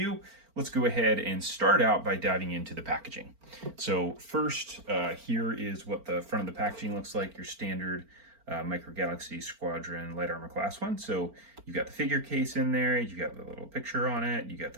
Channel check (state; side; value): late; left; 4.4 ms